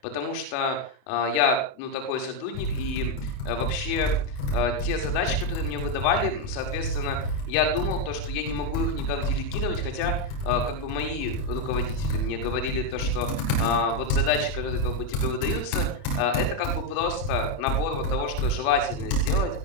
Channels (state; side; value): late; right; 28 ms